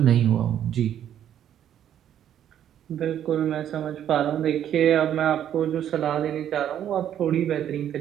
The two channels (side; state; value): left; quieter; 10.3 dB